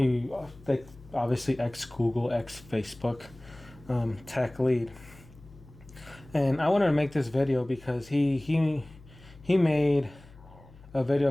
obviously ex Google, ex Facebook, TechLead. And I wanted to make this video because he made a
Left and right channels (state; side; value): noise; left; hum, 22 dB below the sound